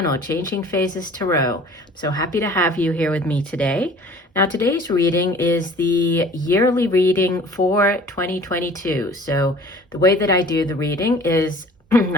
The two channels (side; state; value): both; normal; correlation 0.48